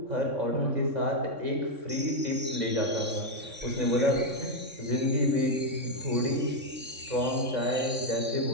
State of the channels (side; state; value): left; late; 3.6 ms